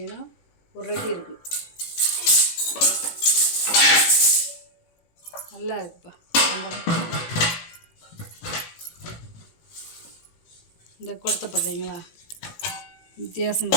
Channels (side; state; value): right; late; 18 ms